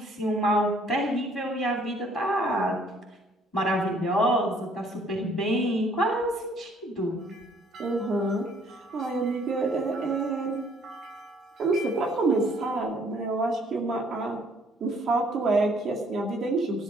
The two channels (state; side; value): normal; both; correlation 0.62